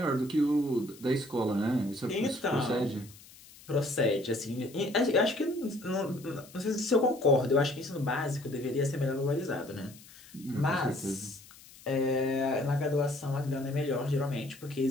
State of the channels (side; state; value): left; noise; hiss, 21 dB below the sound